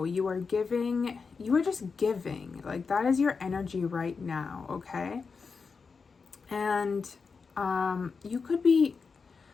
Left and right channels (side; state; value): right; quieter; 5.0 dB